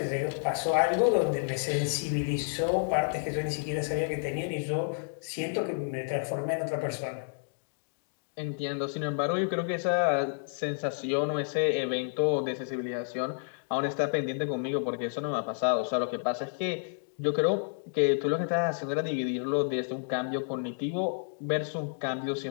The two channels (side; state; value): right; silent; digital silence